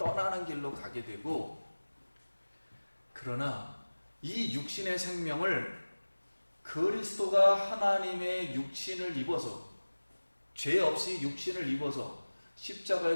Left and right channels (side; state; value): both; inverted; correlation -1.00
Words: 길로 가게 되고, 그러나 이 육신의 생명을 그리스도가 하나님의 육신을 입어서, 죄 없이 육신을 입어서